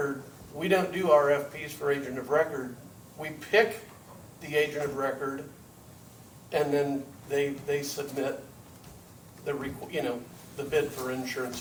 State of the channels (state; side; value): identical; both; correlation 1.00